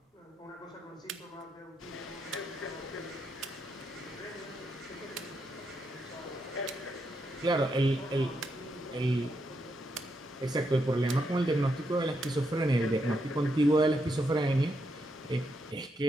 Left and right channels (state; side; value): normal; both; correlation 0.81